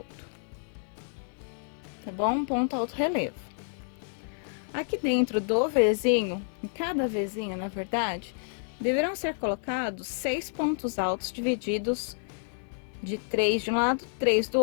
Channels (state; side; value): silent; right; digital silence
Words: Tá bom? Um ponto alto relevo. Aqui dentro do Vzinho, em cada Vzinho, na verdade, deverão ser colocados 6 pontos altos divididos de 3 de um lado, 3 do